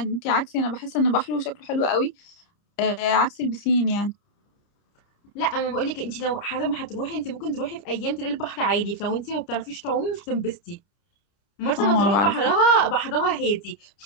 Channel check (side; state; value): right; late; 30 ms